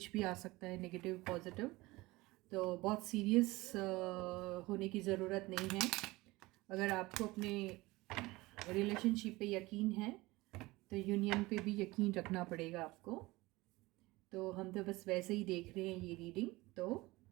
भी आ सकता है, नेगेटिव पॉजिटिव। तो बहुत सीरियस होने की ज़रूरत नहीं है। अगर आपको अपने रिलेशनशिप पे यकीन है तो यूनियन पे भी यकीन रखना पड़ेगा आपको। तो हम तो बस वैसे ही देख रहे हैं ये रीडिंग। तो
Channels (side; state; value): left; quieter; 20.9 dB